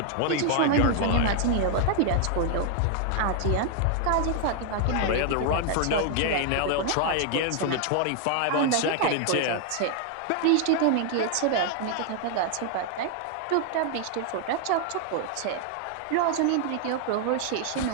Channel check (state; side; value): different; both; correlation 0.00